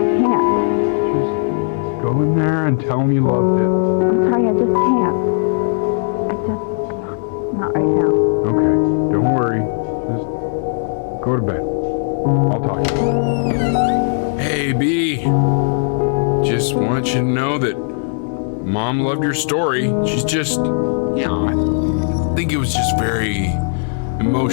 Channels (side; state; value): right; silent; digital silence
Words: Can't. Just go in there and tell him you loved it. I'm sorry, I just can't. Not right now. Okay, don't worry. Just go to bed. I'll talk to you. Hey, B. Just want you to know that Mom loved your story. She's just, I think it was just very